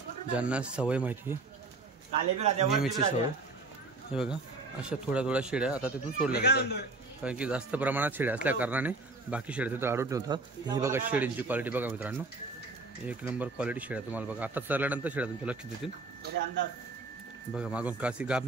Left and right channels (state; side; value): quieter; left; 3.4 dB